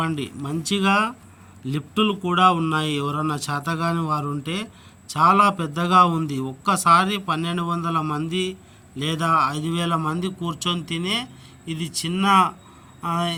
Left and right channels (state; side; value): identical; both; correlation 1.00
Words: మంచిగా లిఫ్టులు కూడా ఉన్నాయి. ఎవరన్నా చేతగాని వారు ఉంటే చాలా పెద్దగా ఉంది. ఒక్కసారి 1200 మంది లేదా 5000 మంది కూర్చొని తినే ఇది చిన్న